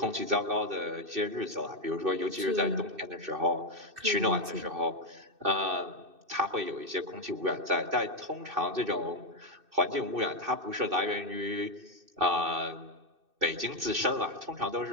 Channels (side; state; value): left; late; 2.6 ms